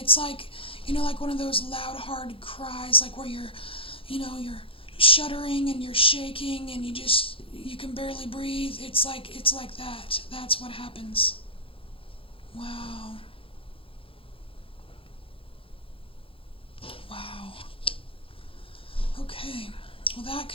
like, like one of those loud, hard cries, like where you're shuddering and you're shaking and you can barely breathe. It's like that. That's what happens. Wow. Wow. Okay. Well, that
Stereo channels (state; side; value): late; right; 0.26 ms